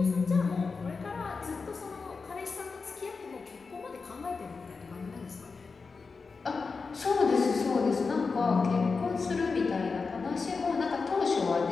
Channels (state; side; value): quieter; right; 4.6 dB